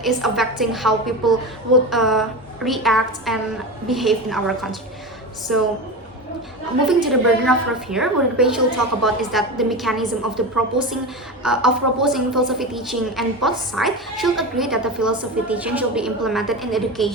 is affecting how people would react and behave in our country. So moving to the burden of proof here, what the page will talk about is that the mechanism of the proposing philosophy teaching, and both sides should agree that the philosophy teaching should be implemented in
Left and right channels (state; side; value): normal; both; correlation 0.23